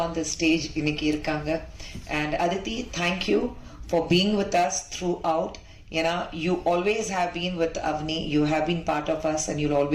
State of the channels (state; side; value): identical; both; correlation 1.00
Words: on the stage இன்னைக்கு இருக்காங்க. And Aditi, thank you for being with us throughout. ஏன்னா you always have been with Avni, you have been part of us and you'll